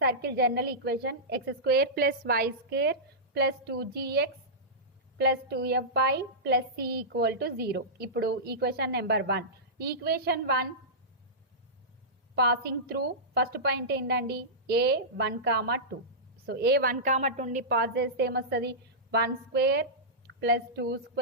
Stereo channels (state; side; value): normal; both; correlation -0.15